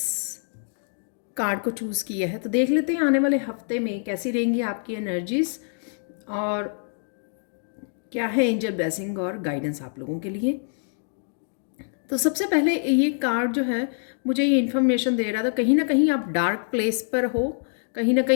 कार्ड को चूज़ किया है तो देख लेते हैं आने वाले हफ्ते में कैसी रहेंगी आपकी एनर्जीज और क्या है एंजल ब्लेसिंग और गाइडेंस आप लोगों के लिए। तो सबसे पहले ये कार्ड जो है मुझे ये इन्फॉर्मेशन दे रहा था, कहीं ना कहीं आप डार्क प्लेस पर हो, कहीं ना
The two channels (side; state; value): right; silent; digital silence